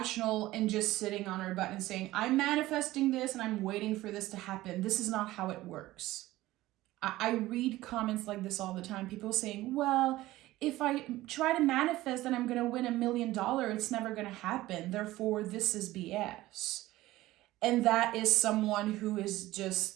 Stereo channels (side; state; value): left; quieter; 16.9 dB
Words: and just sitting on our butt and saying, I'm manifesting this and I'm waiting for this to happen. This is not how it works. I read comments like this all the time. People saying, well, if I try to manifest that I'm going to win $1 million, it's never going to happen. Therefore, this is BS. And that is someone who is